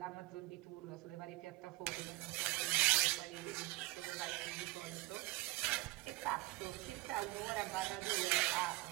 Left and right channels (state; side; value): quieter; left; 21.6 dB